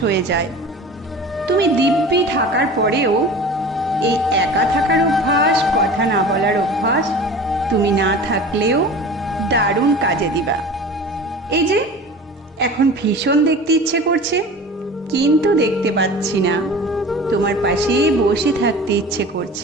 যায়। তুমি দিব্যি থাকার পরেও এই একা থাকার অভ্যাস, কথা না বলার অভ্যাস তুমি না থাকলেও দারুণ কাজে দিবা। এই যে এখন ভীষণ দেখতে ইচ্ছে করছে, কিন্তু দেখতে পাচ্ছি না। তোমার পাশে বসে থাকতে ইচ্ছে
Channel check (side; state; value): both; normal; correlation 0.38